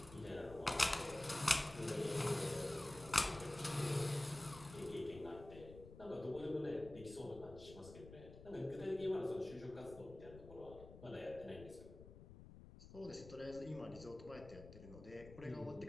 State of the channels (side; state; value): left; noise; rumble, 15 dB below the sound